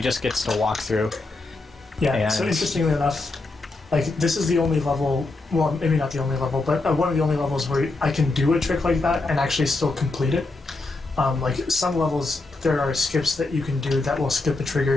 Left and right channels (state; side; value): quieter; right; 3.3 dB